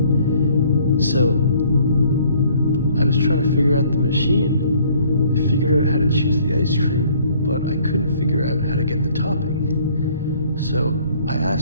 So I was trying to figure out the machine. I figured out how to choose the ice cream, but I couldn't figure out how to get the topping. So I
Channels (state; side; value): inverted; both; correlation -0.59